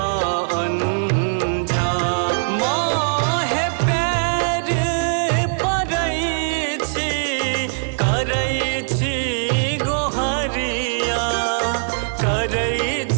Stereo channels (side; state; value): left; silent; digital silence